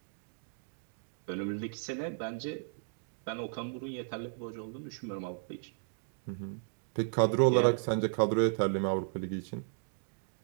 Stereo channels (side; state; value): left; silent; digital silence